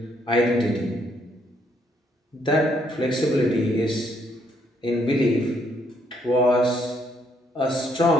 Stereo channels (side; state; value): both; normal; correlation 0.71